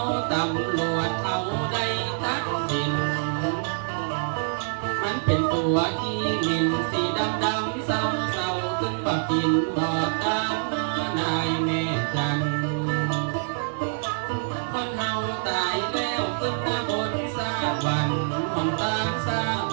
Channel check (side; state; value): left; silent; digital silence